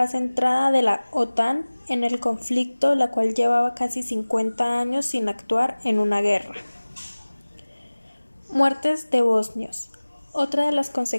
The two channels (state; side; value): inverted; both; correlation -1.00